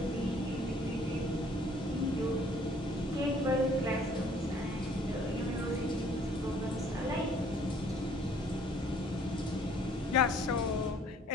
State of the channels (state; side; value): normal; both; correlation 0.58